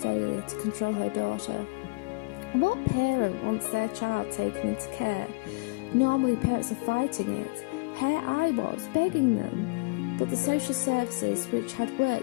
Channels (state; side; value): quieter; right; 28.3 dB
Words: to control her daughter. What parent wants their child taken into care? Normally parents are fighting it. Here I was, begging them. But the social services, which had